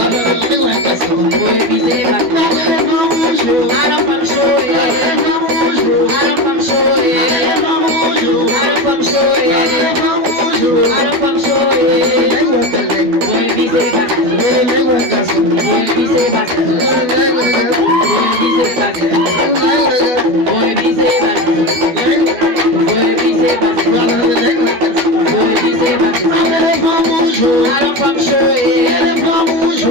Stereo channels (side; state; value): left; late; 12 ms